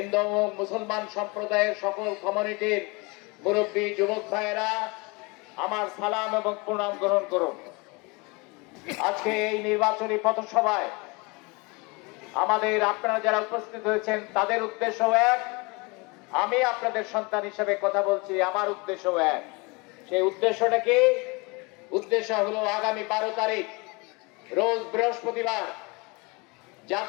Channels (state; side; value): quieter; right; 27.7 dB